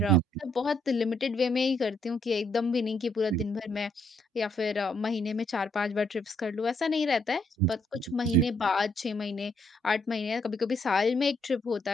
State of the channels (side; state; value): both; normal; correlation 0.72